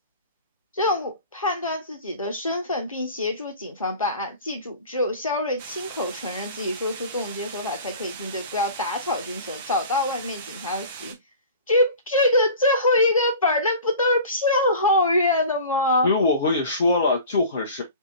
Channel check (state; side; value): inverted; both; correlation -0.40